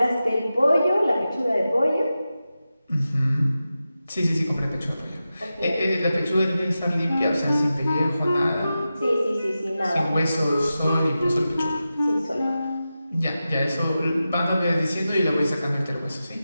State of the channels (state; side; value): inverted; both; correlation -0.92